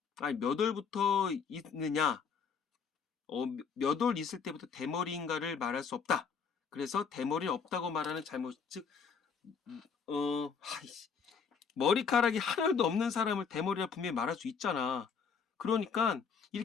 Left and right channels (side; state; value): right; quieter; 6.1 dB